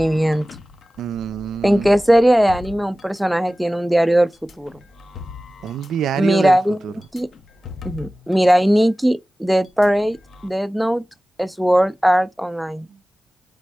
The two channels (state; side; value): normal; both; correlation 0.97